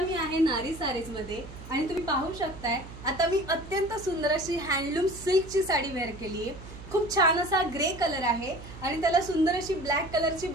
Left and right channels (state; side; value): noise; right; hum, 15 dB below the sound